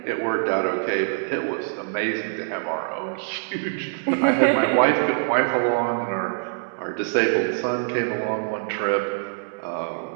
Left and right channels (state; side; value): silent; left; digital silence